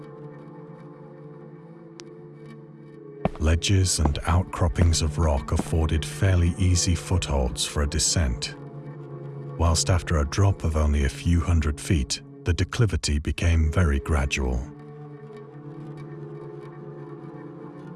Ledges and outcroppings of rock afforded fairly easy footholds for a descent, whilst after a drop of only a few hundred feet, the declivity became very gradual.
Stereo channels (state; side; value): identical; both; correlation 1.00